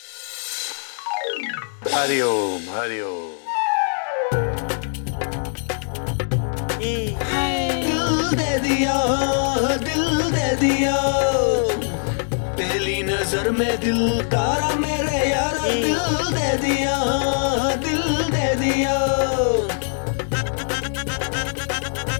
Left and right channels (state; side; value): silent; right; digital silence